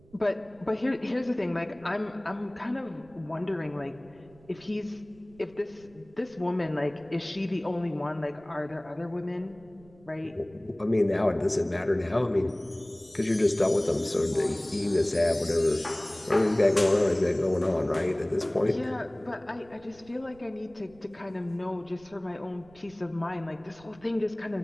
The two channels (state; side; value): noise; right; rumble, 26 dB below the sound